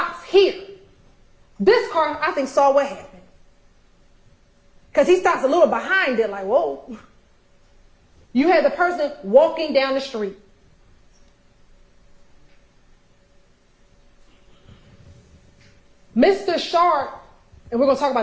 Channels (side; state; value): both; identical; correlation 1.00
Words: here. This car, I think, saw what happened. Because he stops a little behind it, like, whoa. You had the person walking down the street. Mr. Shard, and we're going to talk